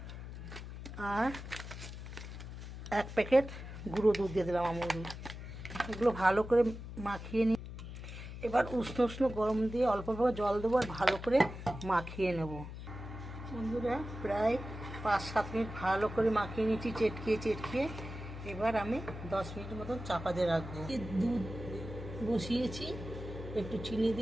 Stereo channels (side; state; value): left; noise; hum, 10 dB below the sound